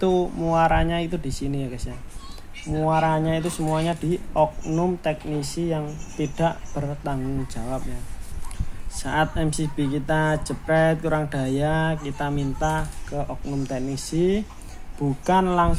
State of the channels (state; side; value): identical; both; correlation 1.00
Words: muaranya itu di sini ya guys ya. Muaranya itu semuanya di oknum teknisi yang tidak bertanggung jawab ya. Saat MCB kita jepret kurang daya, kita minta ke oknum teknisi, bukan